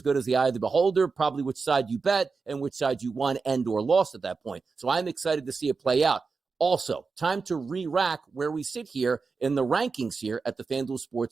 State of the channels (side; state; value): left; quieter; 4.6 dB